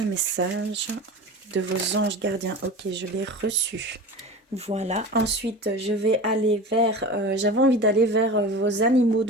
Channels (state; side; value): normal; both; correlation 0.32